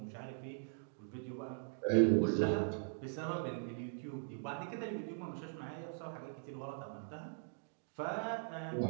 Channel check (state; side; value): silent; left; digital silence